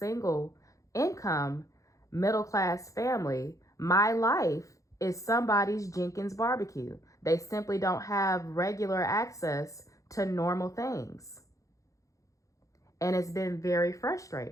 income middle class family. My life is somebody's Jenkins barbecue. They simply don't have regular access to normal things. And it's been very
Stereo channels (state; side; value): late; right; 0.16 ms